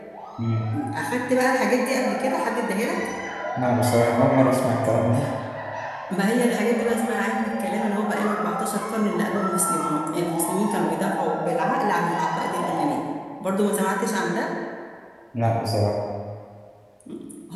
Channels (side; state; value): both; identical; correlation 1.00